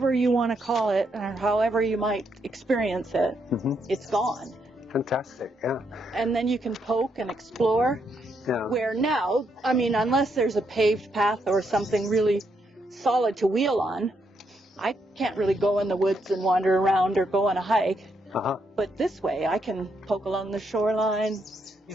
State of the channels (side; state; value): both; normal; correlation 0.77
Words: you want to call it, or however you might experience it. It's gone. Fantastic, yeah. And then you can poke and explore. Yeah. Where now, I mean, unless there's a paved path or something really solid to wheel on, I can't really go in the woods and wander around or go on a hike. But this way, I can poke along the shoreline,